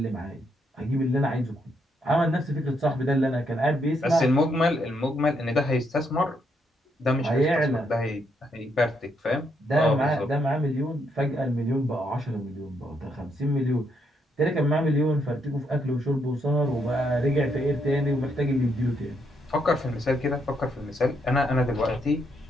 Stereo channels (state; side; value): normal; both; correlation 0.76